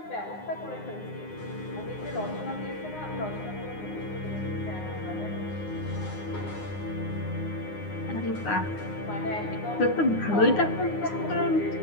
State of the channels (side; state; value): right; late; 9.7 ms